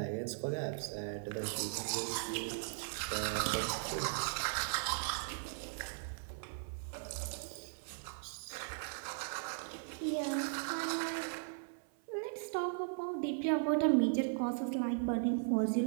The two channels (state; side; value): silent; left; 52 dB below the other